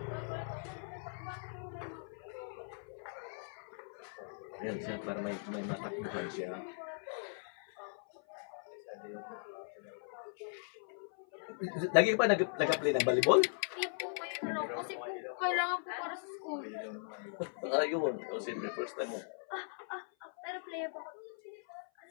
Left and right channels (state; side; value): silent; right; 52 dB below the other